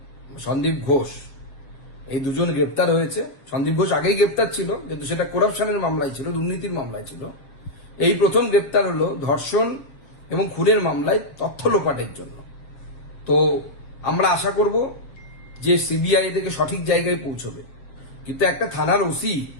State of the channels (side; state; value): right; late; 7.4 ms